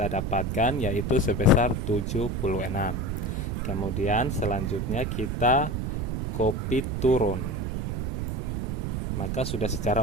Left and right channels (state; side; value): noise; right; rumble, 1 dB below the sound